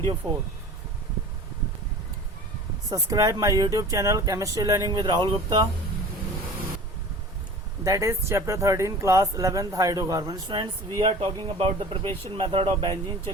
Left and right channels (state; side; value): normal; both; correlation 0.40